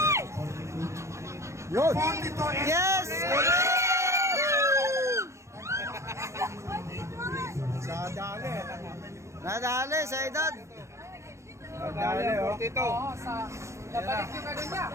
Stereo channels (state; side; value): late; left; 0.14 ms